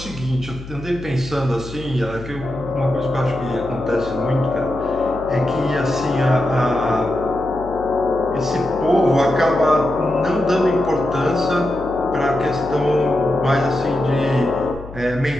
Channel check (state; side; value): noise; left; hum, 14 dB below the sound